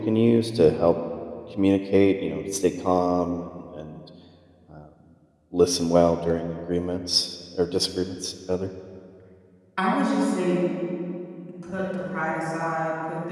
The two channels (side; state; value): both; identical; correlation 1.00